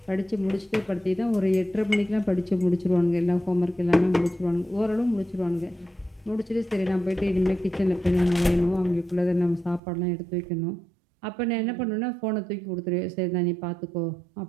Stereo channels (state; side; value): drops out; left; at 9.8 s